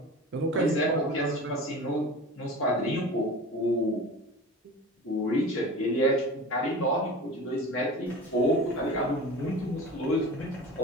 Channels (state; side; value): normal; both; correlation 0.35